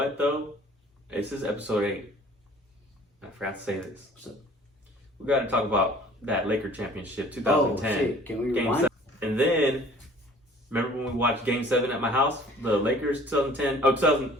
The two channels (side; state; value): both; normal; correlation 0.51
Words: though? This is episode 8. I forgot to say this. What's up? We got to talk about that Laker championship 2010. Oh shit! Can we Game rewind? 7. And then remember when we watched Game 7 at my house? The Lakers 2010. Oh,